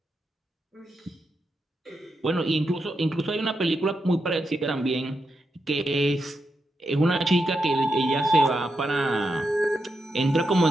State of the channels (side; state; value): both; normal; correlation 0.85